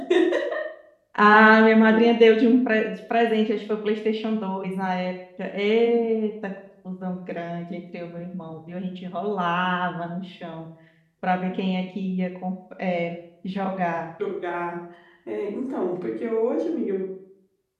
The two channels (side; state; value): both; identical; correlation 1.00